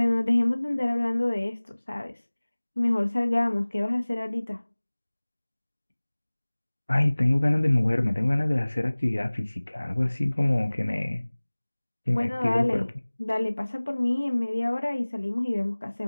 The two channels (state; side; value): inverted; both; correlation -1.00